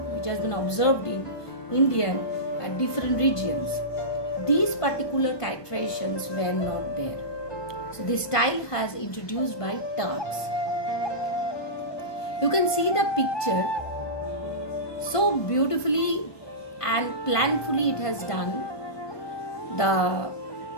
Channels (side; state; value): right; late; 1.2 ms